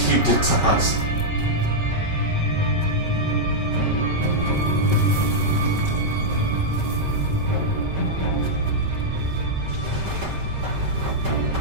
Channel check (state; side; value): late; left; 5.2 ms